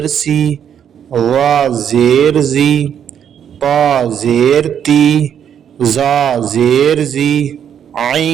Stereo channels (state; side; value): quieter; left; 8.8 dB